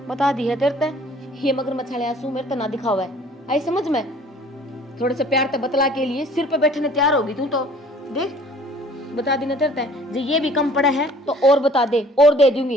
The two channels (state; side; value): normal; both; correlation 0.52